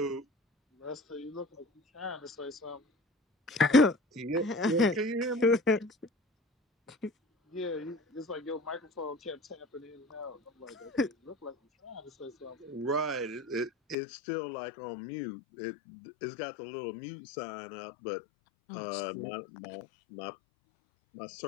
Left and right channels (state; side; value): drops out; right; at 14.0 s